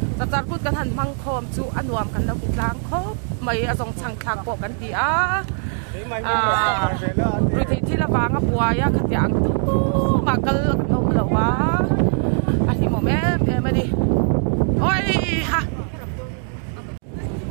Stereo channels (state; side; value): silent; left; 59 dB below the other